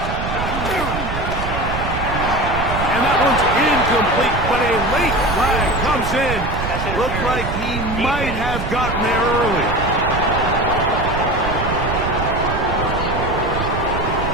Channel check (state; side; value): noise; right; rumble, 5 dB below the sound